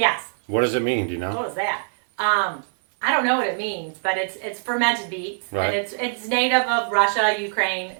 What does it mean? Do you know? What is that? I don't know what it means, but it's fermented beets. Right. And it's native of Russia, Ukraine,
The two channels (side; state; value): left; silent; 60 dB below the other